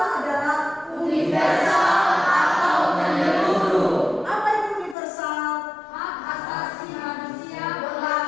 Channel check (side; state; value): right; drops out; at 5.0 s